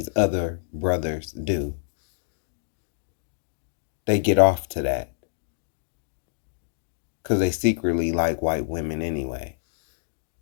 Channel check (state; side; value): silent; right; digital silence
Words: other brothers do. They get off to that because they secretly like white women anyway.